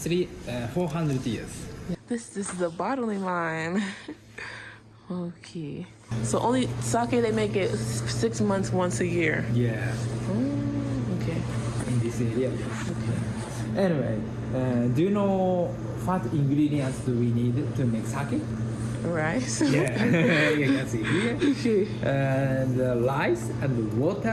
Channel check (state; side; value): identical; both; correlation 1.00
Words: 400 years. This is a bottling line. Okay. So only sake they make it 6 months once a year. Yeah. Okay. In this area. Okay. Anyway, do you know what ingredients do we need to make sake? Rice. Yeah, you can see here. Okay. And rice and